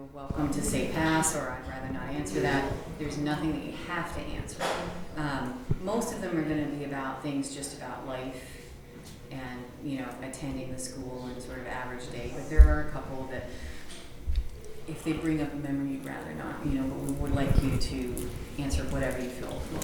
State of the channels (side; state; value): both; identical; correlation 1.00